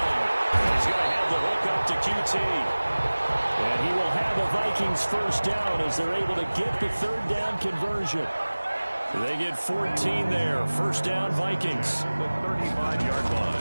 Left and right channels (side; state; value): both; inverted; correlation -1.00